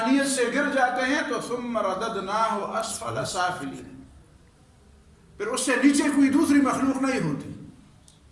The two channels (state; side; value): identical; both; correlation 1.00